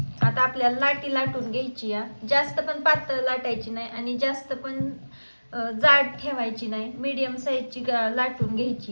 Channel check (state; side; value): inverted; both; correlation -1.00